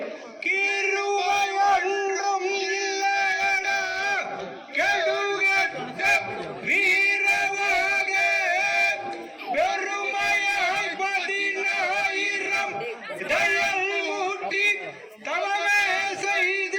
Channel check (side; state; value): both; identical; correlation 1.00